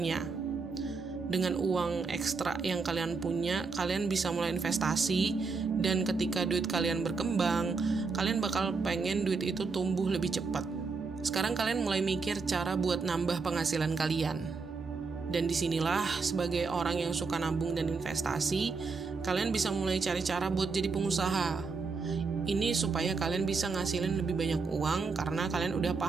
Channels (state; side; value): quieter; left; 4.5 dB